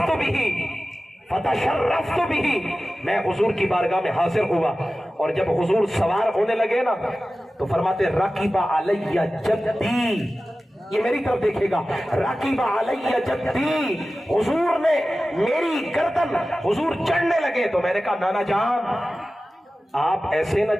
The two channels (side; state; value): both; normal; correlation 0.95